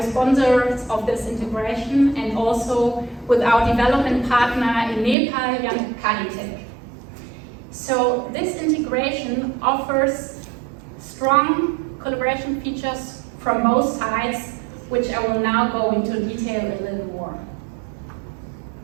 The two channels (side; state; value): left; drops out; at 5.2 s